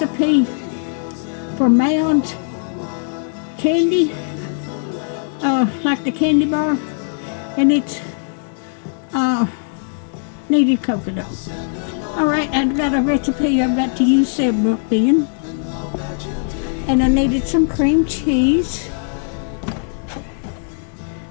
for Mounds candy, like the candy bar, and it's needed coconut. Alright, I've got a recipe I've got to use several in. And I needed some cream cheese.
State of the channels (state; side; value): silent; right; digital silence